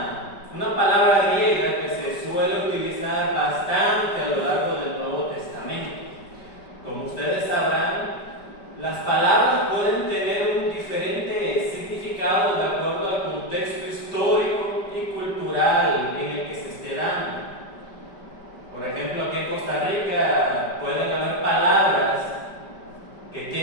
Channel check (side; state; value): right; late; 5.1 ms